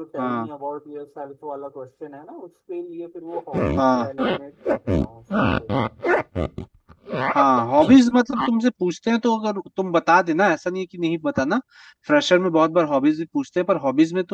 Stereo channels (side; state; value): both; identical; correlation 1.00